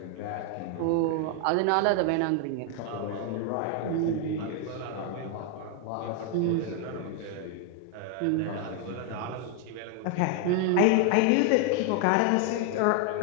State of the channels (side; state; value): both; different; correlation 0.00